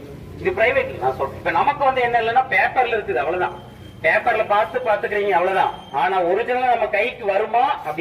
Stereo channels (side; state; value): both; identical; correlation 1.00